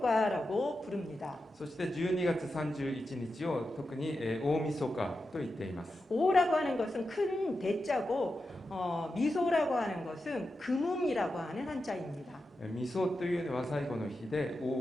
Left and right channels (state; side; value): normal; both; correlation 0.89